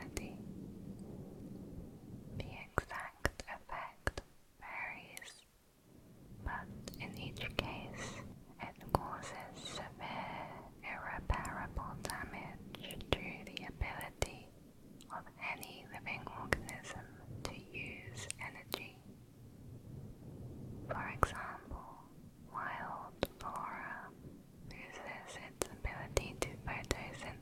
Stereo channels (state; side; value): identical; both; correlation 1.00